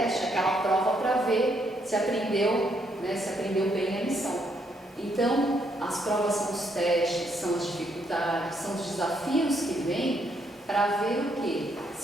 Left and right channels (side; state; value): both; normal; correlation 0.74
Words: aquela prova para ver se aprendeu, se aprendeu bem a lição. Então, as provas são os testes, são as dificuldades, são os desafios que vêm para ver o quê?